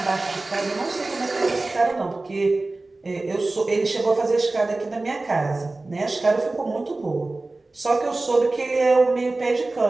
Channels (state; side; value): quieter; left; 3.1 dB